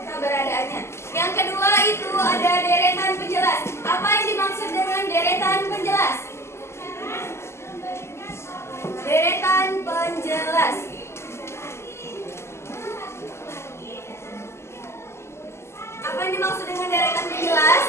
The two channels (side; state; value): right; late; 0.13 ms